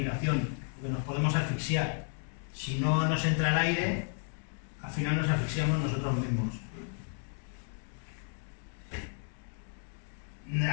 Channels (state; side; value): silent; right; 56 dB below the other